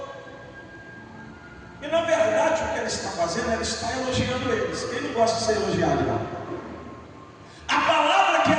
e na verdade o que ele está fazendo, ele está elogiando eles. Quem não gosta de ser elogiado, não? A palavra que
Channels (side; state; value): both; identical; correlation 1.00